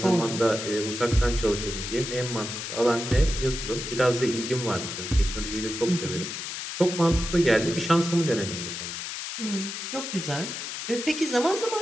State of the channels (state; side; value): noise; left; hiss, 6 dB below the sound